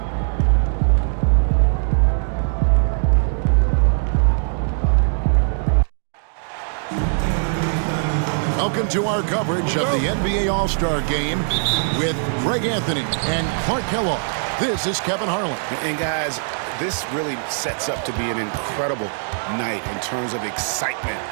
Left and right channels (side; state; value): left; silent; digital silence